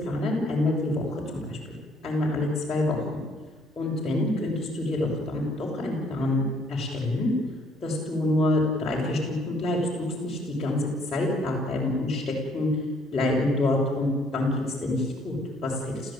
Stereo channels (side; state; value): both; normal; correlation 0.63